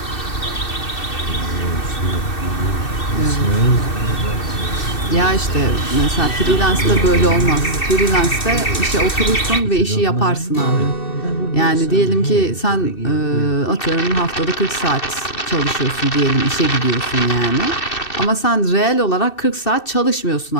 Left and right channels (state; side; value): late; right; 2.6 ms